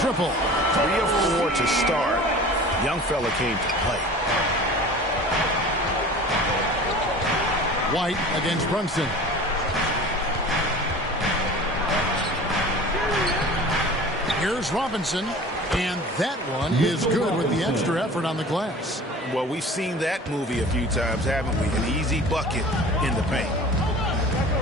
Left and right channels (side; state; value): both; normal; correlation 0.41